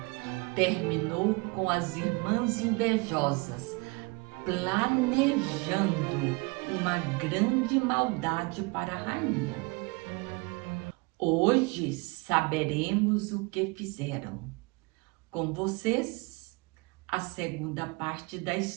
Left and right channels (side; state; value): left; quieter; 27.6 dB